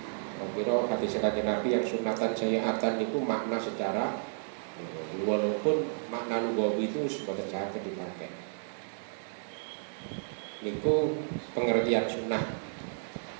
Kira hadis kanjeng Nabi yang sunatan sayyi'atan itu makna secara walaupun makna lugawi itu sebagai saged dipakai. Niku pengertian sunnah.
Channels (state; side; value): silent; left; digital silence